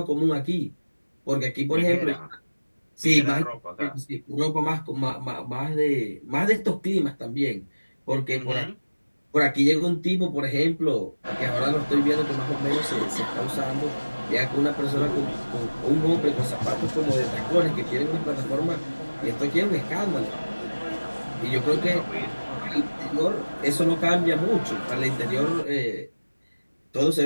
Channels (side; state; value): both; inverted; correlation -1.00